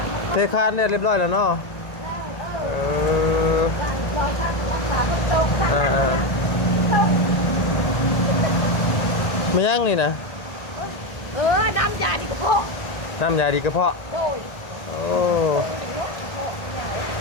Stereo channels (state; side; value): late; right; 1.6 ms